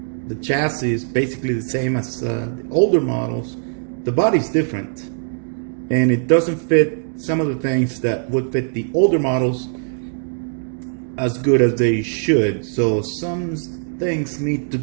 chassis is basically the same as the older models. The body's different, and it doesn't fit some of the things that would fit the older models as good as they should. So some things need to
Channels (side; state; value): left; silent; digital silence